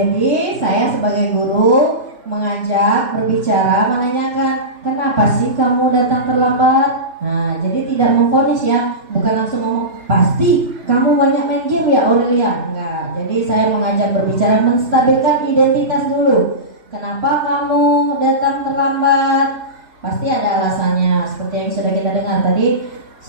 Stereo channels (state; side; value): late; left; 3.0 ms